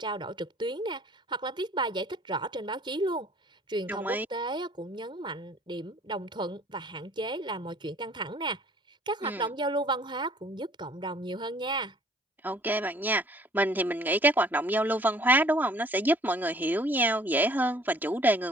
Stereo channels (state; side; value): normal; both; correlation 0.55